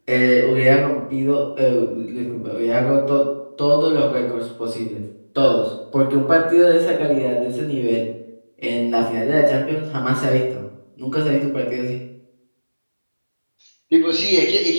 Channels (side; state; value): both; inverted; correlation -1.00